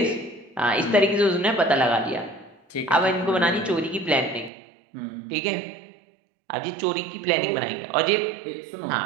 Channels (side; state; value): left; drops out; at 4.5 s